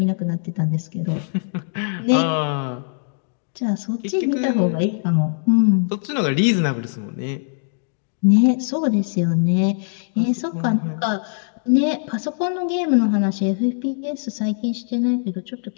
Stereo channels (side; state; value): right; silent; digital silence